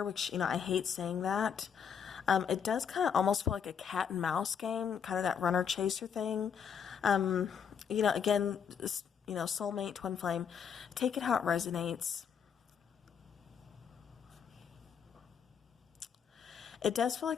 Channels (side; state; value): right; quieter; 7.4 dB